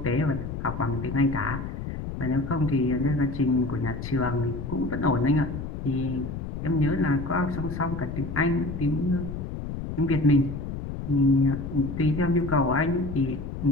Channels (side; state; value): left; noise; rumble, 7 dB below the sound